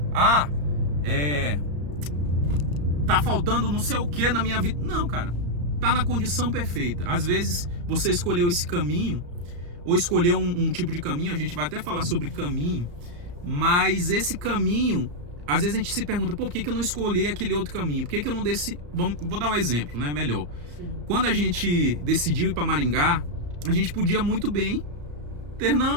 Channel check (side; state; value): left; late; 34 ms